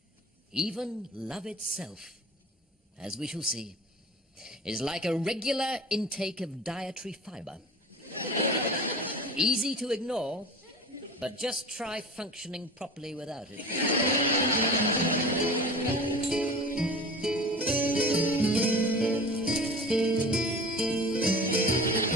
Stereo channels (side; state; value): both; normal; correlation 0.36